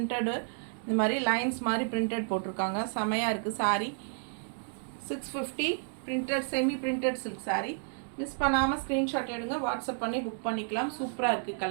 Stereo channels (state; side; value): silent; left; digital silence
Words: இந்த மாதிரி லைன்ஸ் மாதிரி பிரிண்டட் போட்டிருக்காங்க. செமையாக இருக்குது sorry. 650 printed semi printed silk sorry. Miss பண்ணாமல் ஸ்க்ரீன்ஷாட் எடுங்க, வாட்ஸ்அப் பண்ணி புக் பண்ணிக்கலாம். சூப்பராக இருக்குது